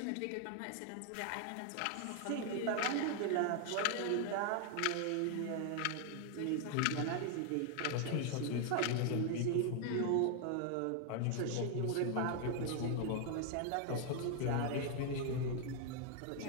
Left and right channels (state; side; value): different; both; correlation 0.00